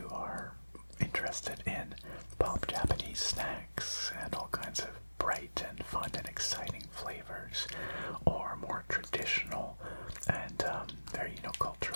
are interested in pop Japanese snacks and all kinds of bright and fun and exciting flavors, or more traditional and very,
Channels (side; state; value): both; inverted; correlation -1.00